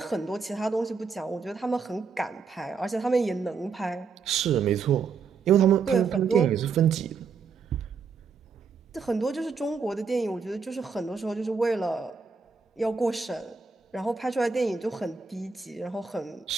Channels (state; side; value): quieter; left; 5.4 dB